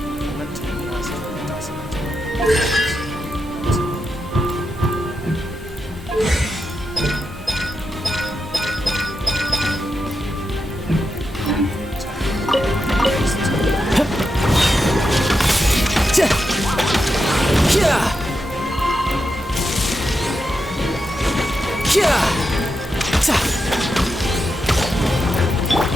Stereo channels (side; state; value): both; normal; correlation 0.87